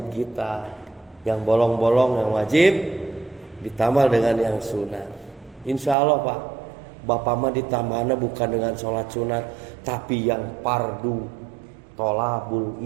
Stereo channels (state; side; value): drops out; left; at 6.0 s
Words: kita. Yang bolong-bolong yang wajib ditambah dengan yang sunat. Insya Allah pak, bapak mah ditambahnya bukan dengan sholat sunat, tapi yang fardu tolabul